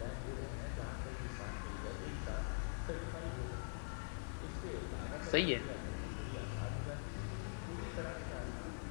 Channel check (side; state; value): right; silent; digital silence